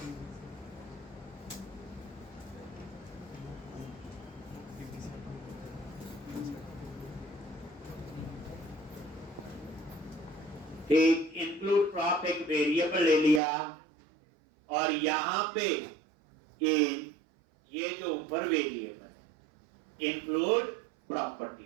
एक इंक्लूड प्रॉप एक वेरिएबल ले लिया, और यहां पे इन ये जो ऊपर वेरिएबल है इंक्लूड प्रॉपर्टी।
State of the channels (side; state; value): left; drops out; at 13.4 s